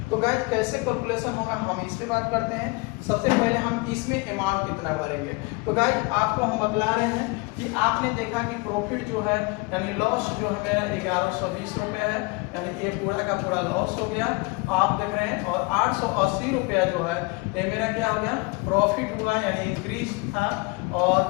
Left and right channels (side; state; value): right; quieter; 26.7 dB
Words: तो गाइस कैसे कैलकुलेशन होगा हम इस पे बात करते हैं। सबसे पहले हम इसमें अमाउंट कितना भरेंगे। तो गाइस आपको हम बतला रहे हैं कि आपने देखा कि प्रॉफिट जो है यानी लॉस जो है मेरा 1120 रुपये है, यानी ये पूरा का पूरा लॉस हो गया आप देख रहे हैं। और 880 रुपया जो है ये मेरा क्या हो गया प्रॉफिट हुआ, यानी इंक्रीज था। और